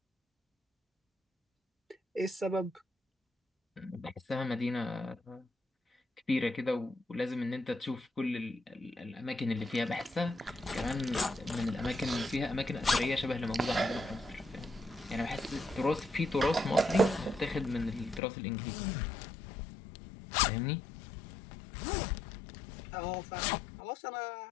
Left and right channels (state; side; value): drops out; right; at 18.2 s